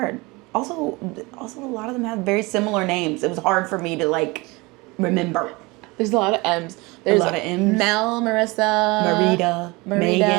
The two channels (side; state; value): left; quieter; 24.3 dB